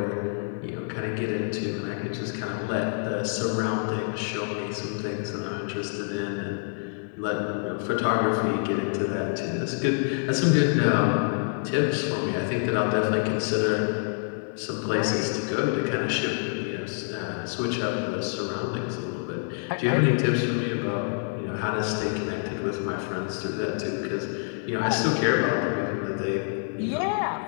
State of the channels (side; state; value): right; silent; 60 dB below the other